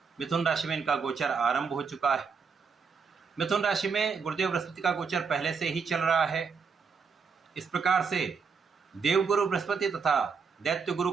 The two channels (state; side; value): quieter; left; 5.6 dB